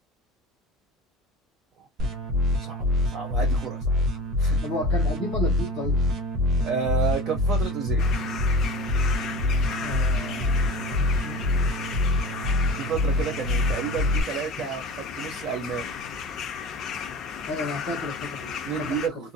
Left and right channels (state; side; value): normal; both; correlation 0.35